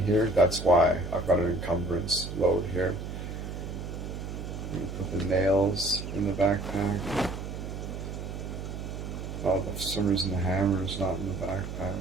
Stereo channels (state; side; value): noise; right; hum, 7 dB below the sound